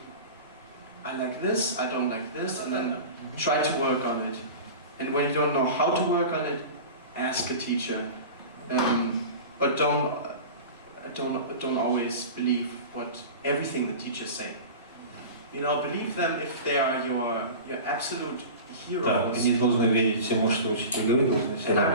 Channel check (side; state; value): both; inverted; correlation -0.33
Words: I like this, I don't like this, and then try to work on it. And when you don't know how to work on it, ask a teacher. But don't always believe everything the teachers say. You know, believe them if they are your absolute heroes. And